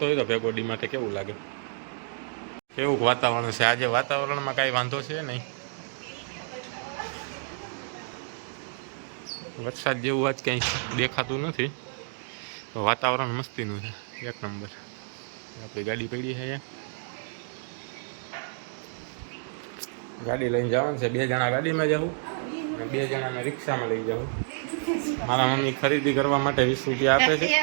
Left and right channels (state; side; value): silent; left; digital silence